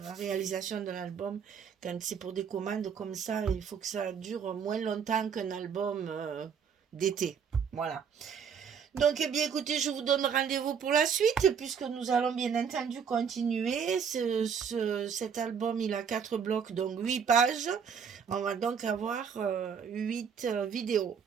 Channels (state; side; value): quieter; left; 7.0 dB